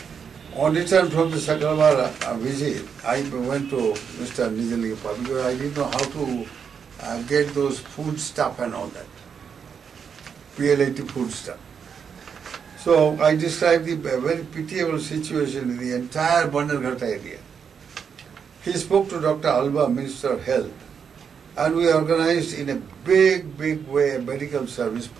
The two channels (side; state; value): left; quieter; 6.8 dB